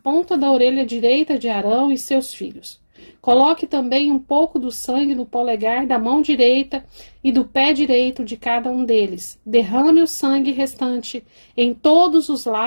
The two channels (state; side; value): inverted; both; correlation -1.00